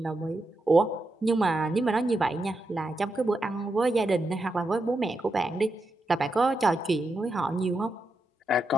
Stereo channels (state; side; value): normal; both; correlation 0.86